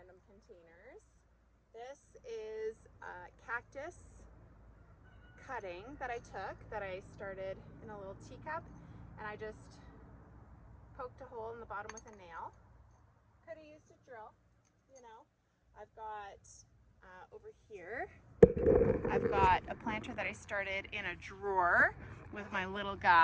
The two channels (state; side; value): identical; both; correlation 1.00